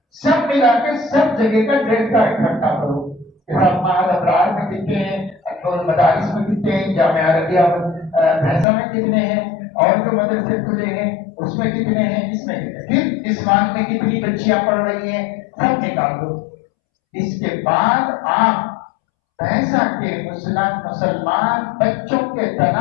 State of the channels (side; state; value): right; drops out; at 8.7 s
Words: ملا کے سب جگہ کا ڈیٹا اکٹھا کرو کہ سب معہد ابرار میں کتنے ہیں، انور مدارس میں کتنے ہیں، جامعہ عربیہ بھینسا میں کتنے ہیں، اور جو مدرسے کھلے ہیں اس میں کتنے ہیں، اس میں کتنے، پھر اسمان میں کتنی بچیاں پڑھ رہی ہیں، سب نکال دو۔ اس کے بعد آپ بھینسا کے مسلمان بچوں کے